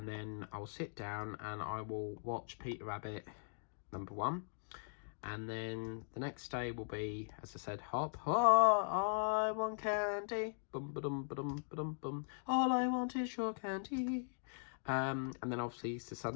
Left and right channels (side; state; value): right; silent; digital silence